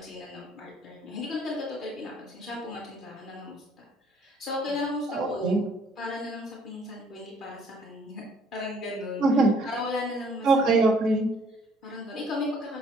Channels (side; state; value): both; normal; correlation 0.60